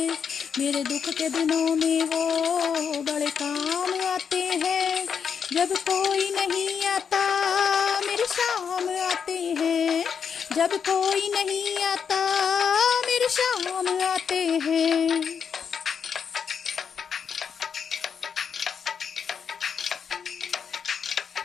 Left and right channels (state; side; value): quieter; right; 6.9 dB